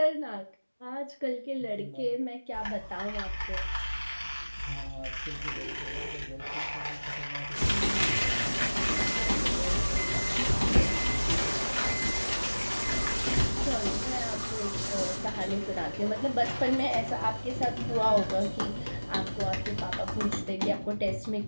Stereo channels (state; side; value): inverted; both; correlation -1.00